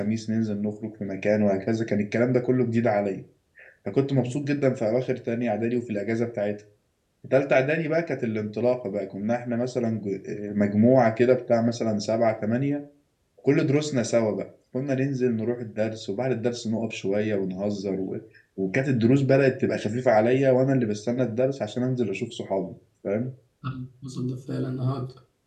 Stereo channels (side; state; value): both; identical; correlation 1.00